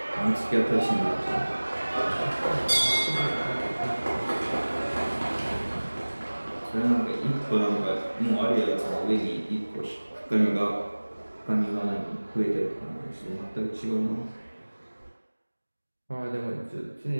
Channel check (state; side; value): inverted; both; correlation -1.00